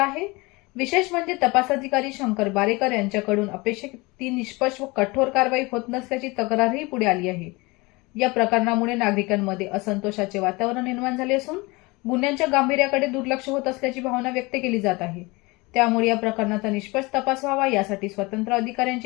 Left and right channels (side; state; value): right; quieter; 24.5 dB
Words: आहे। विशेष म्हणजे तपास अधिकारी शंकर बारेकर यांच्याकडून अपेक्षित ती निष्पक्ष व कठोर कारवाई होत नसल्याची तक्रारही पुढे आली आहे। या प्रकरणामुळे नागरिकांमध्ये असंतोषाचे वातावरण निर्माण झाले असून गुन्ह्यांच्या गांभीर्याकडे दुर्लक्ष होत असल्याची भावना व्यक्त केली जात आहे। त्यामुळे या प्रकरणाचा निष्पक्ष तपास व्हावा यासाठी स्वतंत्र